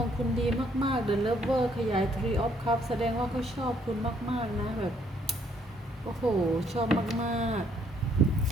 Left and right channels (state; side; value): normal; both; correlation 0.67